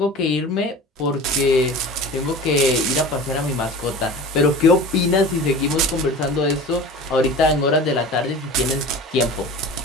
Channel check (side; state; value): both; normal; correlation 0.36